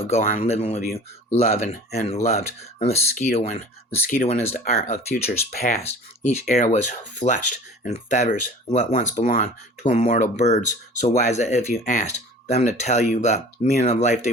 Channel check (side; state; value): both; normal; correlation 0.43